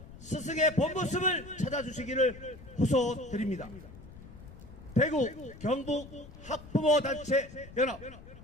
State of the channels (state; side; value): noise; left; rumble, 17 dB below the sound